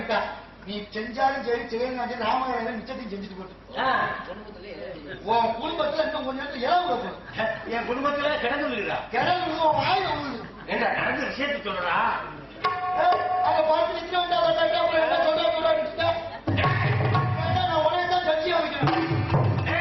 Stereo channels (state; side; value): identical; both; correlation 1.00